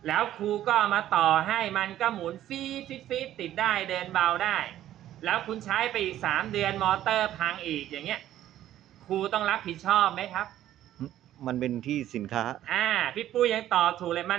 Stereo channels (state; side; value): quieter; left; 12.6 dB